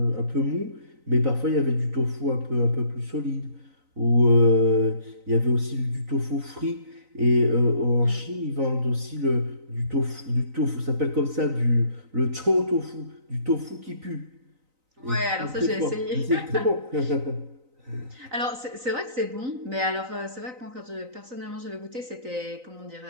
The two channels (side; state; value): left; late; 3.9 ms